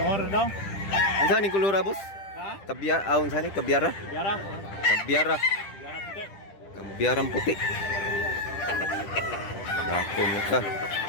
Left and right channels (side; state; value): right; late; 10 ms